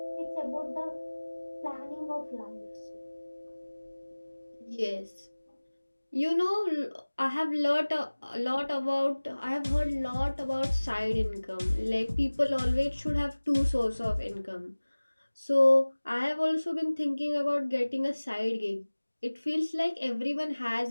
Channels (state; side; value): inverted; both; correlation -1.00